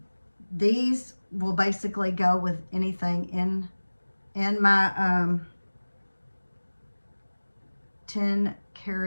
These will basically go with anything in my 10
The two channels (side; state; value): both; inverted; correlation -1.00